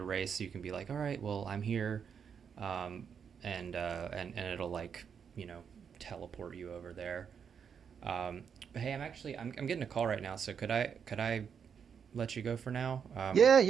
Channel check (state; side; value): quieter; left; 7.1 dB